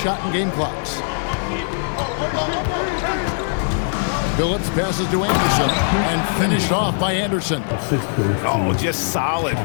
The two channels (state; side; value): silent; right; digital silence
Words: and game clocks. Phillips passes to Anderson and finished off by Anderson. Oh, just solid